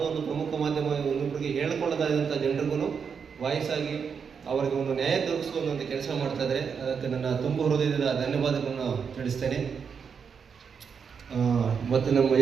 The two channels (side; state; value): left; quieter; 6.4 dB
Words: ಒಂದು ಪ್ರಮುಖ ಮಾಧ್ಯಮ ಇನ್ನೊಬ್ಬರಿಗೆ ಹೇಳ್ಕೊಳ್ಳೋದಾದಂಥ ಜನರಿಗೂ ವಾಯ್ಸ್ ಆಗಿ ಅವರಿಗೆ ಒಂದು ನ್ಯಾಯ ದೊರಕಿಸುವಂಥ ಕೆಲಸ ಮಾಡ್ತಾ ಇದ್ದಾರೆ. ಅದಕ್ಕೆ ನನ್ನ ತುಂಬ ಹೃದಯದ ಧನ್ಯವಾದಗಳನ್ನು ತಿಳಿಸ್ತೇನೆ. ಮತ್ತು ನಮ್ಮ